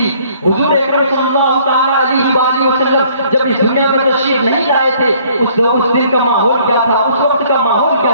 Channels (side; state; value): both; inverted; correlation -0.60